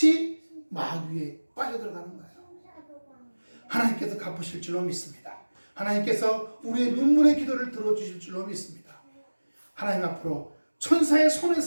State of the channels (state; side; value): inverted; both; correlation -1.00